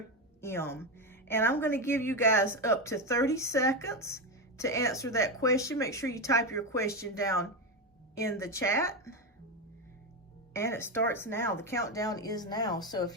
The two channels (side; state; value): both; normal; correlation 0.13